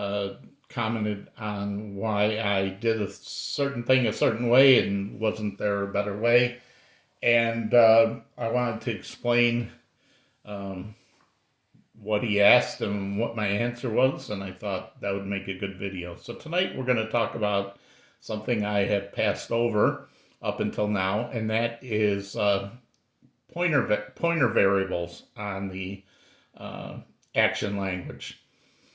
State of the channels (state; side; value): identical; both; correlation 1.00